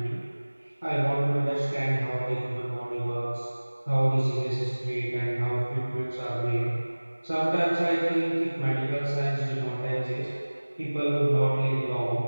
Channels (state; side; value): inverted; both; correlation -1.00